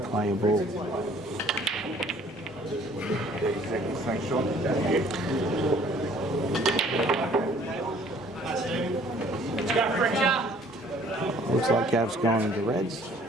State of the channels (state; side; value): normal; both; correlation 0.57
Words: a ball. 30 seconds, thanks Sean. Let's go, FRECCIA. Looks like Gav's gone into reds.